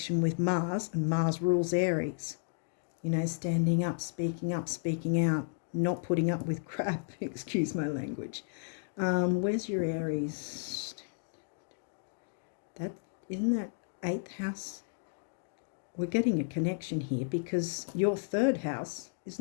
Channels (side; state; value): right; silent; digital silence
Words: with Mars, and Mars rules Aries. You know, standing up, speaking out, not putting up with crap, excuse my language. Where's your Aries? Isn't that 8th house? We're getting a connection here, because your 3rd house,